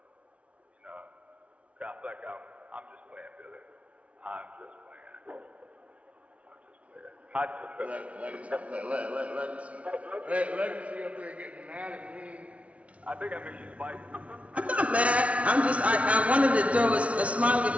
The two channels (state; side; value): late; left; 0.064 ms